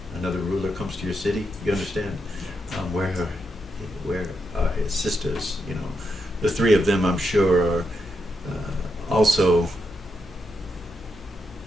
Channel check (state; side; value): normal; both; correlation 0.83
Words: another ruler comes to your city, you understand? Where are his sisters, the three of them I'm sure are also,